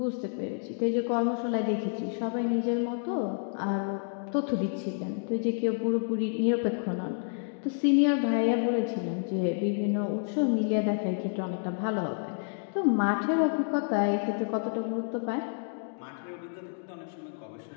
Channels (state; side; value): silent; right; digital silence